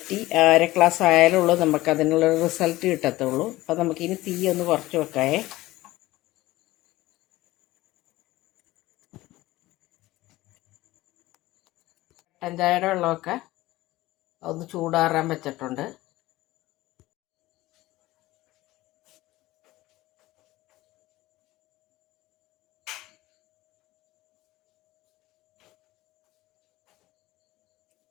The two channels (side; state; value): right; quieter; 17.9 dB